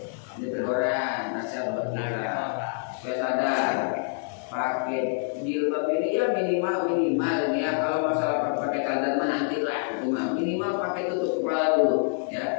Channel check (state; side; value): silent; right; digital silence